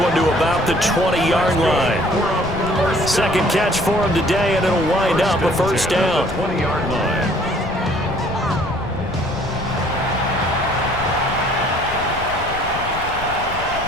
to about the 20-yard line. 2nd catch for him today, and it'll wind up a 1st down. 20-yard line.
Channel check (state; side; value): noise; left; rumble, 11 dB below the sound